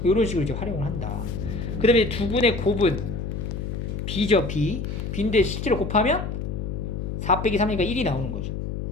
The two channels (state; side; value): noise; left; hum, 4 dB below the sound